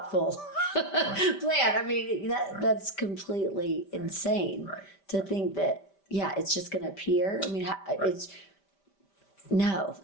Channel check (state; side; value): late; right; 5.1 ms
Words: plan. I mean, that's completely insane to think that. Yeah, it's just going to appear. I mean, it's no.